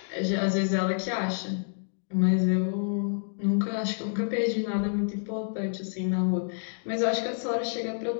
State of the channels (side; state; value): right; silent; digital silence